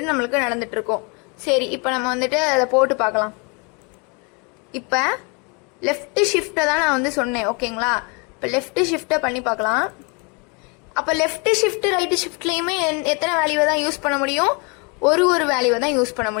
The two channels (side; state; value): right; quieter; 32.6 dB